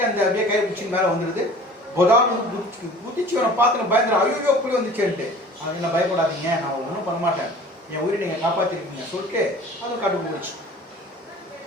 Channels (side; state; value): both; normal; correlation 0.45